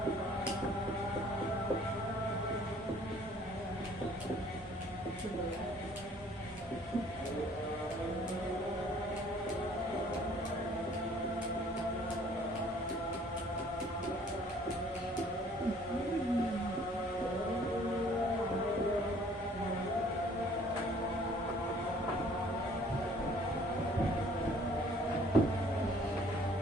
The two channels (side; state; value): both; normal; correlation 0.56